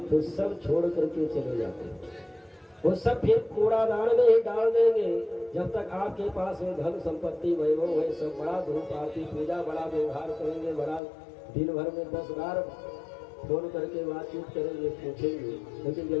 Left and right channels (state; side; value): drops out; right; at 11.0 s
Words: तो सब छोड़ करके चले जाते हैं। वो सब फिर कूड़ादान में ही डाल देंगे। जब तक आपके पास में धन संपत्ति वैभव है, सब बड़ा धूप आरती पूजा बड़ा व्यवहार करेंगे, बड़ा दिन भर में 10 बार फोन करके बातचीत करेंगे, पूछेंगे। लेकिन